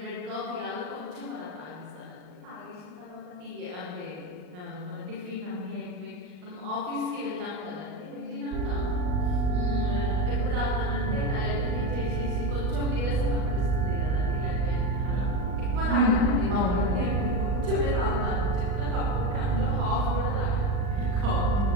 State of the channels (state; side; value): late; left; 39 ms